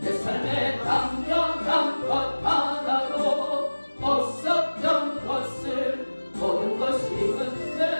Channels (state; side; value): inverted; both; correlation -1.00